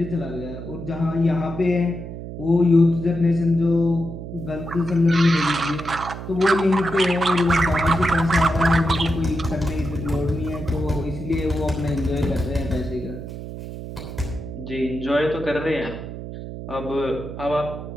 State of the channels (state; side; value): noise; right; hum, 9 dB below the sound